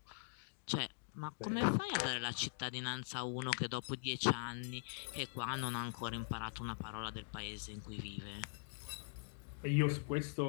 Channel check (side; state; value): right; silent; digital silence